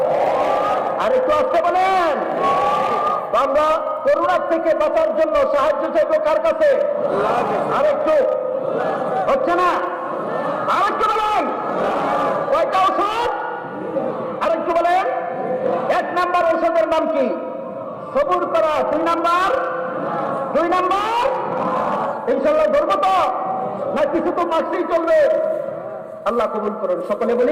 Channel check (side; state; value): both; identical; correlation 1.00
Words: আর একটু আসতে বলেন। আমরা করোনার থেকে বাঁচার জন্য সাহায্য চাইব কার কাছে? আরেকটু হচ্ছে না? আরেকটু বলেন। কয়টা ওষুধ? আরেকটু বলেন। 1 নাম্বার ওষুধের নাম কি? সবুর করা। 2 নাম্বার ইনশাল্লাহ ধরবো তো না? কিছু তো মাসেই চলবে। আল্লাহ কবুল করুন, সকলে